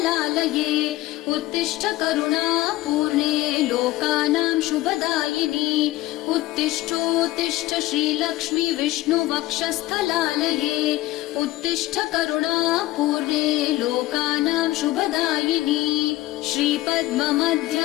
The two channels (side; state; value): right; quieter; 17.2 dB